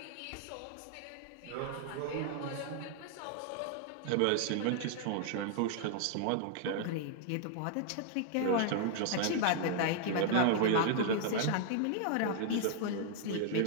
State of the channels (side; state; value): both; different; correlation 0.00